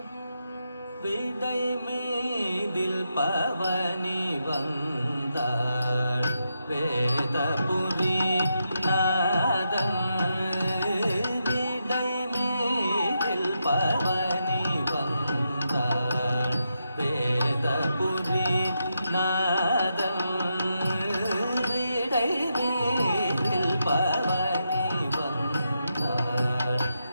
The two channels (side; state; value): both; inverted; correlation -0.83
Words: விடை மீதில் பவனி வந்தாள் வேதபுரி நாதன் விடை மீதில் பவனி வந்தாள் வேதபுரி நாதன் விடை மீதில் பவனி வந்தாள்